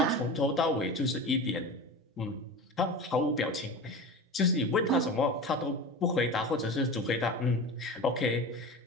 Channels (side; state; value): both; normal; correlation 0.30